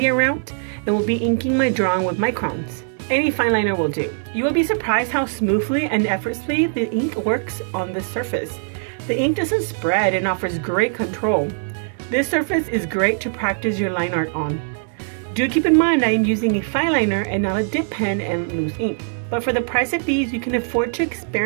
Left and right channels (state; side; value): silent; left; digital silence